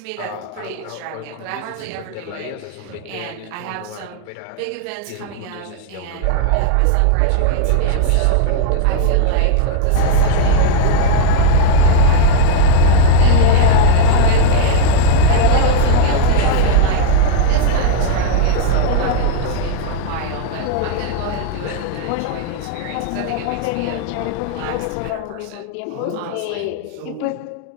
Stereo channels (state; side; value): different; both; correlation -0.01